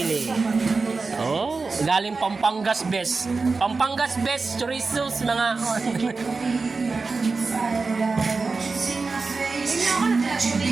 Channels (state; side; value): quieter; left; 4.1 dB